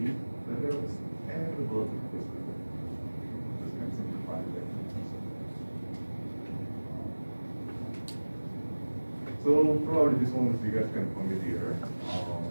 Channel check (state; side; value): inverted; both; correlation -1.00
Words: levels and the blood glucose level. Just can simplify that. So probably this one is you guys can familiar.